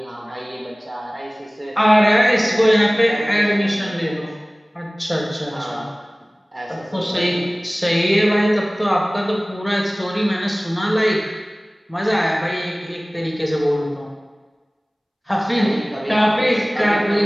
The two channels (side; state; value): both; normal; correlation 0.98